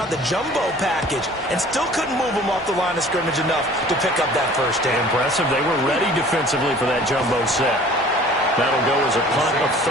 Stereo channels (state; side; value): normal; both; correlation 0.48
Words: the jumbo package and still couldn't move them off the line of scrimmage enough to pick up that first down. Impressive. They were ready defensively for that jumbo set. That'll go as a punt of